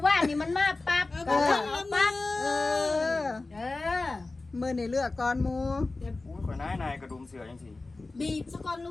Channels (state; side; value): quieter; right; 3.4 dB